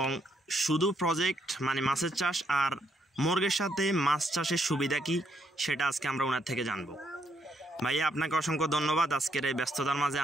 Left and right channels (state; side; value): normal; both; correlation 0.74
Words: শুধু প্রজেক্ট মানে মাছের চাষ আর মুরগের সাথে মাছ চাষের সুবিধা কি সেটা আজকে আমরা ওনার থেকে জানব। ভাইয়া, আপনাকে অসংখ্য ধন্যবাদ আজকের এই ব্যস্ততার মাঝে